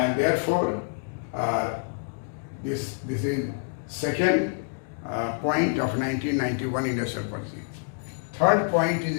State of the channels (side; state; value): right; silent; digital silence